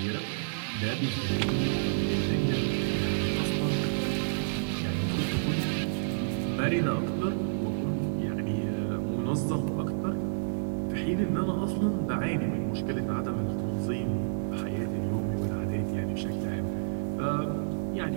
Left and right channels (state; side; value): silent; left; digital silence